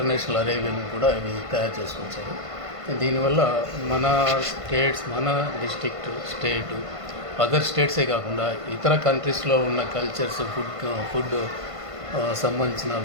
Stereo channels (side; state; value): left; late; 1.5 ms